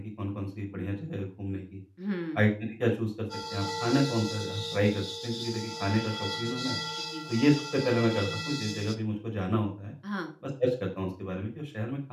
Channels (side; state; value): both; identical; correlation 1.00